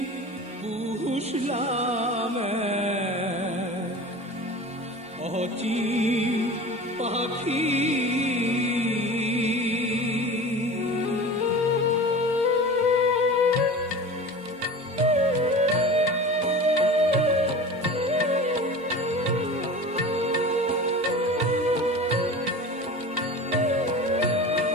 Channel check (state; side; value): normal; both; correlation 0.35